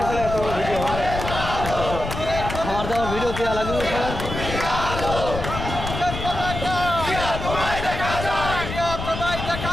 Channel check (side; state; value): left; noise; rumble, 6 dB below the sound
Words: আসলে এত ভিডিও হয়। আমার দেওয়া ভিডিও দেওয়া লাগবে সবার।